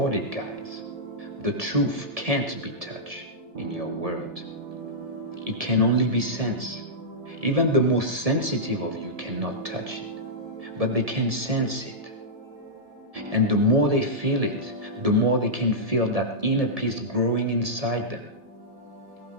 it, guys. The truth can't be touched in your world. It can only be sensed. Even the most sensitive of you cannot touch it, but they can sense it. And the more they feel it, the more they can feel that inner peace growing inside them.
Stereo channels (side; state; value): left; late; 1.7 ms